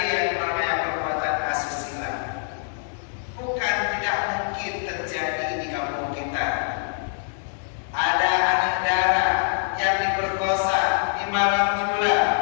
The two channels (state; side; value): silent; right; digital silence